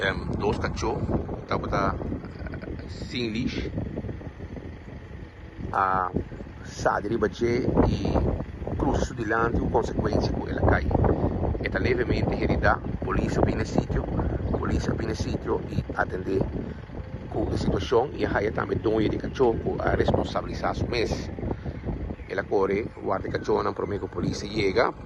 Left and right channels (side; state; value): both; identical; correlation 1.00